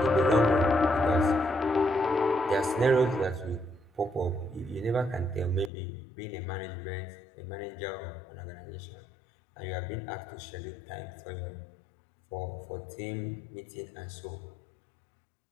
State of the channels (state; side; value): drops out; right; at 5.7 s